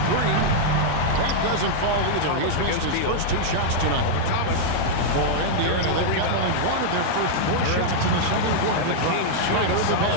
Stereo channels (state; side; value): different; both; correlation -0.02